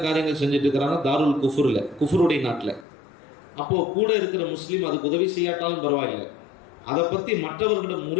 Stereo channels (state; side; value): drops out; right; at 2.9 s